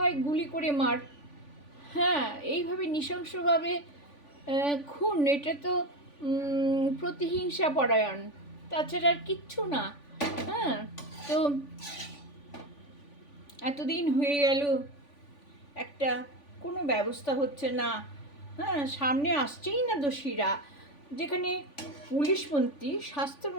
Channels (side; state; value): right; late; 3.5 ms